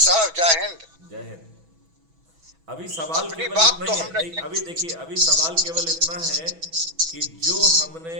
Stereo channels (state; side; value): late; left; 6.1 ms